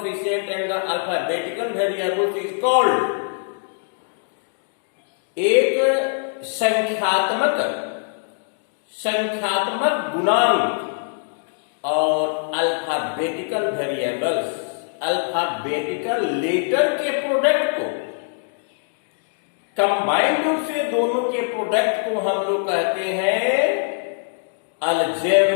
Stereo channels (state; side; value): silent; right; digital silence